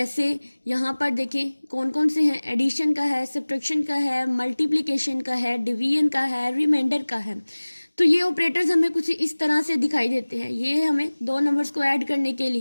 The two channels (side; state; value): both; inverted; correlation -1.00